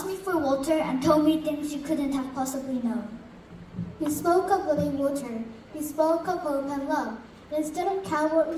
me for water and told me things you couldn't have possibly known. You spoke of living water. You spoke of hope and love. Instead of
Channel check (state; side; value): identical; both; correlation 1.00